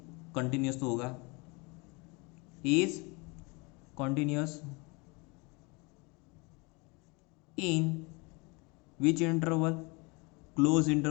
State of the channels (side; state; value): right; quieter; 28.2 dB